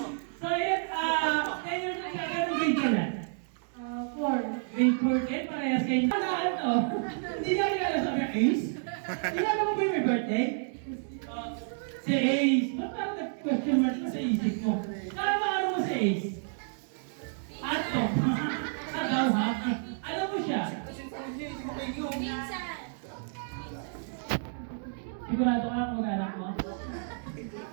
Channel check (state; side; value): silent; left; digital silence